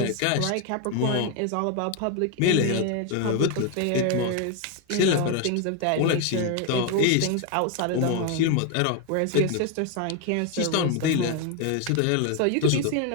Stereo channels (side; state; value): both; different; correlation 0.01